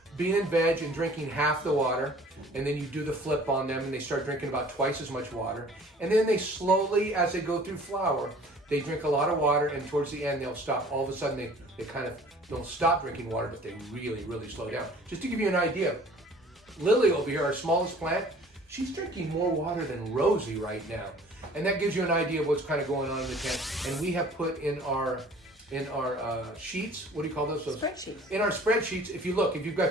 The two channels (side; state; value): both; normal; correlation 0.50